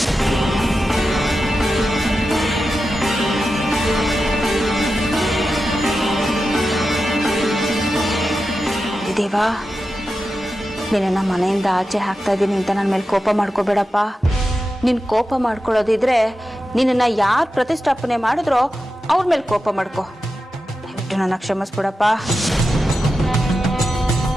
ದೇವಾ, ನಿನ್ನ ಮನೆಯಿಂದ ಆಚೆ ಹಾಕ್ತಾ ಇದ್ದೀನಿ ಅಂತ ನನ್ನ ಮೇಲೆ ಕೋಪ ಮಾಡ್ಕೋಬೇಡಪ್ಪ. ನೀನು ಕೋಪ ಮಾಡ್ಕೊಳ್ಳೋದಿದ್ರೆ ನಿನ್ನನ್ನು ಯಾರು ಪ್ರತಿಷ್ಠಾಪನೆ ಮಾಡಿದ್ರೋ ಅವ್ರ ಮೇಲೆ ಕೋಪ ಮಾಡ್ಕೊ. ದಯವಿಟ್ಟು ನನ್ನ ಕ್ಷಮಿಸ್ಬಿಡಪ್ಪ.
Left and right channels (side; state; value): both; normal; correlation 0.91